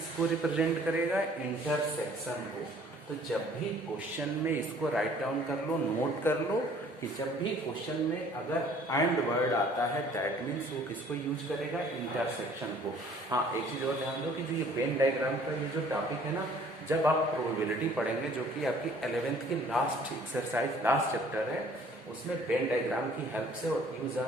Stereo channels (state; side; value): normal; both; correlation 0.55